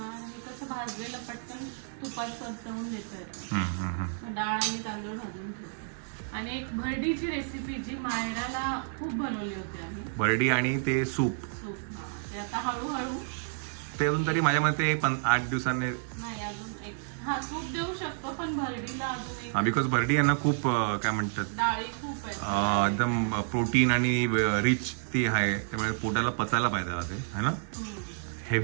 आणि कसं भाजलेलं पटकन तुपात परतवून देतं. डाळ आणि तांदूळ भाजून ठेवतो. आणि एक भरडीची रेसिपी जी मायराला खूप बनवली होती आम्ही, भरडी आणि ते सूप. ते आता हळूहळू ते अजून तरी माझ्या मते 8 दिवसांनी नाही अजून एक सूप देऊ शकतो, पण भरडीला अजून एक. बिकॉज भरडी यांना खूप काय म्हणतात, डाळी खूप आहे, एकदम प्रोटीन आणि रिच ती आहे, त्यामुळे पोटाला पचायला पाहिजे ते है ना.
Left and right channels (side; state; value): left; silent; 56 dB below the other